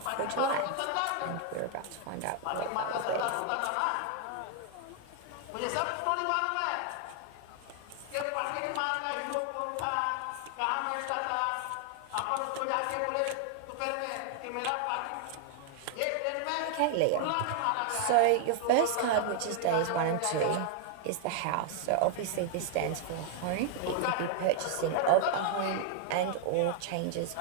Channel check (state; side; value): different; both; correlation 0.00